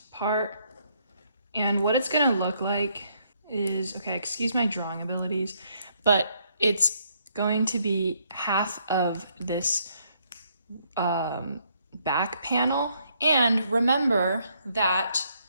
part. And what it's gonna look like is, okay, excuse my drawing abilities, but it's going to be half of this back panel. And remember that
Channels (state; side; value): inverted; both; correlation -0.71